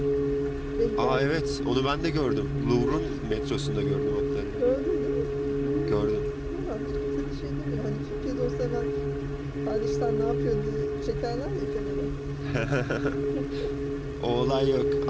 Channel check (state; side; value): identical; both; correlation 1.00